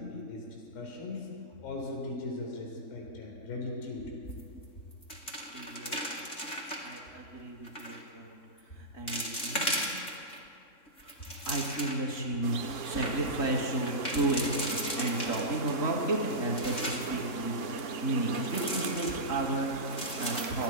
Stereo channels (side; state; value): right; late; 3.5 ms